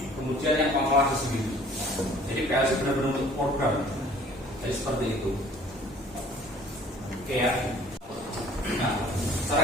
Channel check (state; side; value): normal; both; correlation 0.53